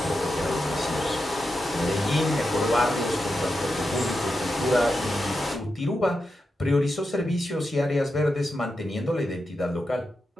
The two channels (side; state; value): both; normal; correlation 0.88